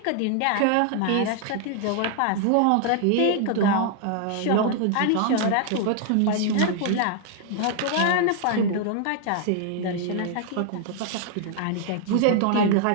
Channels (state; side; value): different; both; correlation 0.00